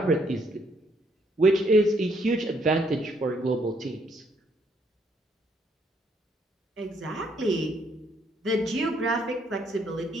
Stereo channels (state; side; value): normal; both; correlation 0.70